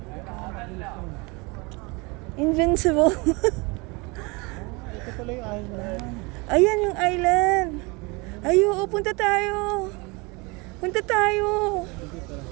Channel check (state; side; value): quieter; left; 27.3 dB